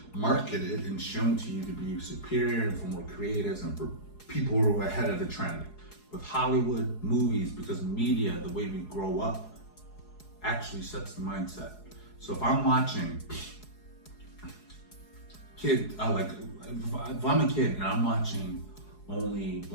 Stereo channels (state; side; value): late; right; 4.8 ms